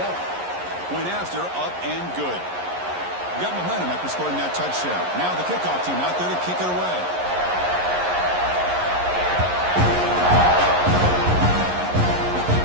Point after, up and good. Got momentum after scoring that touchdown. Now the kickoff team out there to kick it away.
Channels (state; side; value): late; left; 11 ms